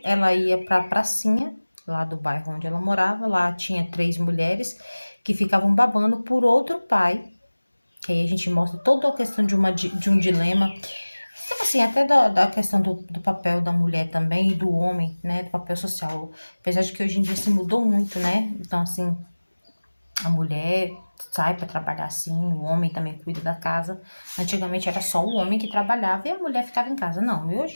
ela ia para a pracinha, lá do bairro onde ela morava. Lá tinha três mulheres que ficavam babando por outro pai. Que aí a gente mostra toda a questão de um dilema. Tipo assim, até da questão do papel da mulher também e do homem, né? Do papel social. Apesar de que hoje em dia se mudou muito, né? Então, assim, a mulher sai para trabalhar assim, o homem também cuida da casa. Antigamente era só o homem que trabalhava e a mulher ficava em casa. Não, e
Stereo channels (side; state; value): both; inverted; correlation -1.00